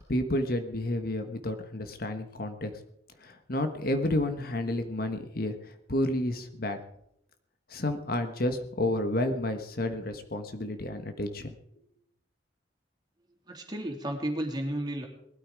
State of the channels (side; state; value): both; normal; correlation 0.58